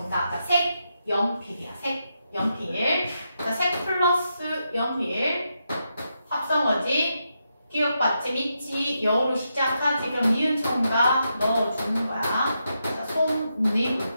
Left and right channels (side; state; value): both; inverted; correlation -0.84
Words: 자, 색, 연필이야. 색, 연필. 자, 색 플러스 연필. 합성어지. 기억 받침 있지. 여로 시작하지. 그럼 니은 첨가 넣어주는 거야. 자, 솜니불.